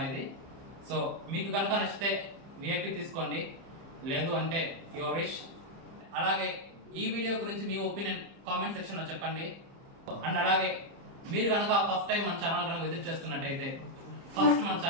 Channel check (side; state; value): left; late; 30 ms